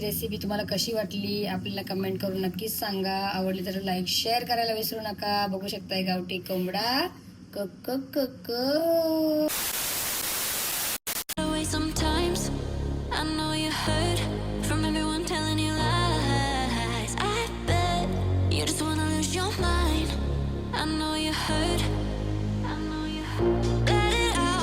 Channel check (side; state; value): both; identical; correlation 1.00